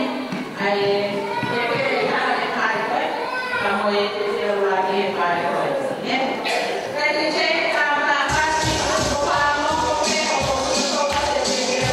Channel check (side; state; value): both; identical; correlation 1.00